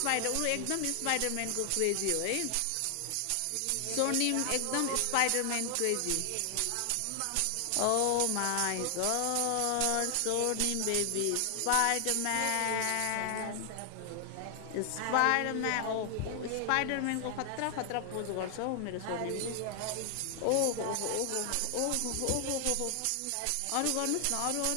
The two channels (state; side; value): different; both; correlation 0.00